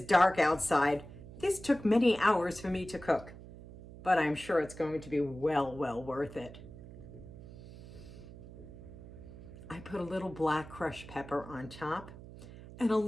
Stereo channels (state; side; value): noise; right; hum, 16 dB below the sound